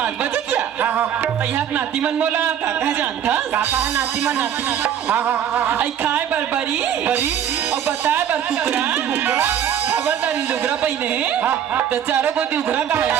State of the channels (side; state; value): left; quieter; 9.4 dB